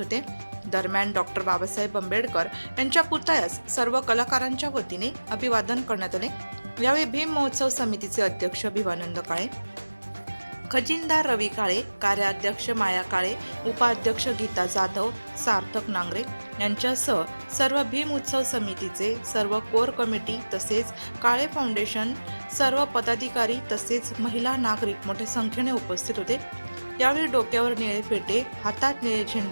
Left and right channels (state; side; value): inverted; both; correlation -1.00